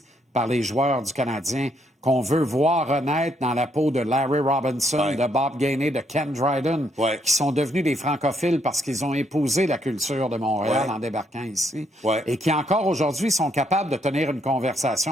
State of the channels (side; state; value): both; normal; correlation 0.73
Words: par les joueurs du Canadien qu'on veut voir renaître dans la peau de Larry Robinson, de Bob Gainey, de Ken Dryden, qui sont devenus des francophiles parce qu'ils ont épousé la culture de Montréal en débarquant ici, et qui encore aujourd'hui sont capables de tenir une